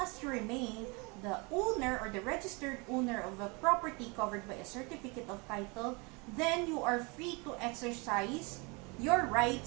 as you remain the owner or the registered owner of a property covered by a certificate of title, then you are free to exercise your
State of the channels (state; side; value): quieter; left; 29.3 dB